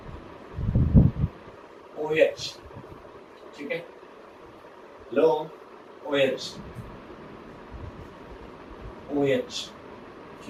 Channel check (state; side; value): identical; both; correlation 1.00